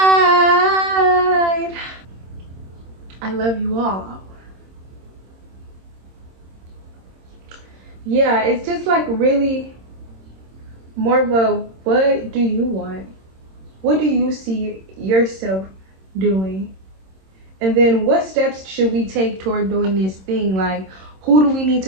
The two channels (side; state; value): left; late; 26 ms